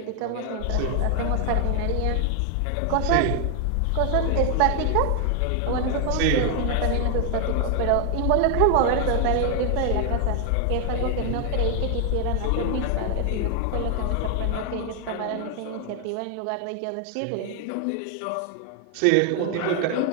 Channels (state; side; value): different; both; correlation 0.00